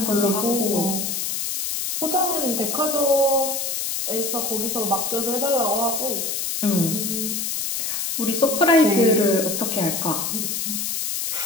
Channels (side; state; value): left; noise; hiss, 2 dB below the sound